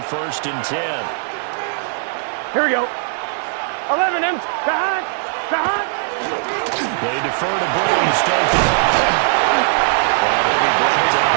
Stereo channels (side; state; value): left; silent; digital silence